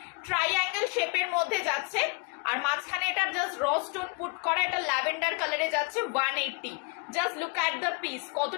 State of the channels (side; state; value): right; quieter; 32.9 dB